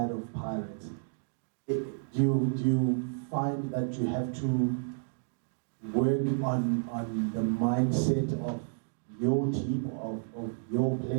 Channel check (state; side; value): silent; left; digital silence